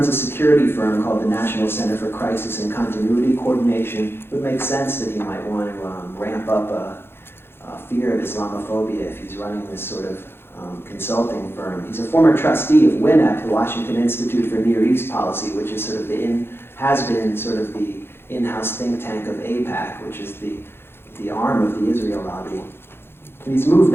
a security firm called the National Center for Crisis and Continuity Coordination. It would make sense that he might want to ramp up a fear of Islamophobia if he's running this sort of consulting firm. He's a former trustee of WINEP, the Washington Institute for Near East Policy, which is sort of has been sort of the in-house think tank of AAPAC, which is the arm of the Israel lobby. And he's moved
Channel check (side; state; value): right; late; 0.11 ms